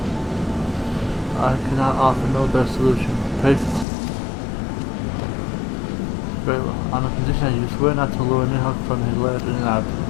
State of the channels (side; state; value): right; drops out; at 3.9 s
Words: I cannot offer no better solution. Pray very well. On the condition that you swear not to lure Nihok from his land in absence.